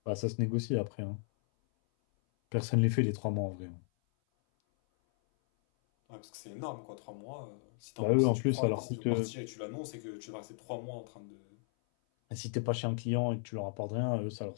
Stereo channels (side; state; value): right; silent; 54 dB below the other